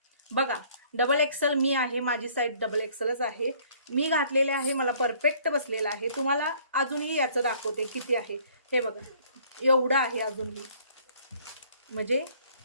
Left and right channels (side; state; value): both; inverted; correlation -0.58